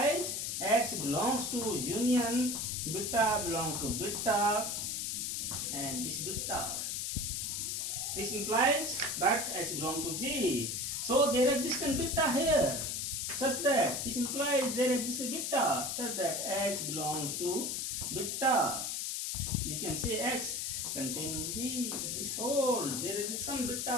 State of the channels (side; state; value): left; noise; hiss, 2 dB below the sound